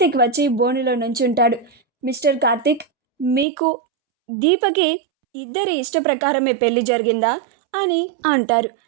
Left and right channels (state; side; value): drops out; left; at 3.5 s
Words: వచ్చి బోనులో నుంచుంటాడు. మిస్టర్ కార్తీక్, మీకు దీపకి ఇద్దరి ఇష్ట ప్రకారమే పెళ్లి జరిగిందా అని అంటారు.